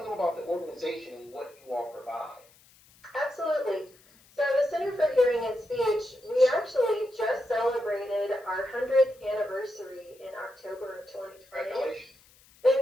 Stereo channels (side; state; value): left; noise; hiss, 28 dB below the sound